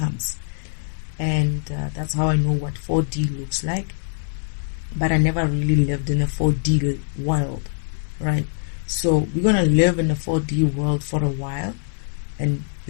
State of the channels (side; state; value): right; silent; digital silence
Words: And that's how I know what 4D looks like. But I never really lived in a 4D world, right? So we're going to live in a 4D world for a while and